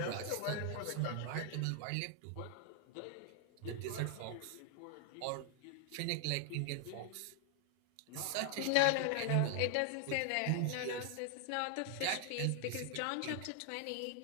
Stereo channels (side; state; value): both; different; correlation 0.00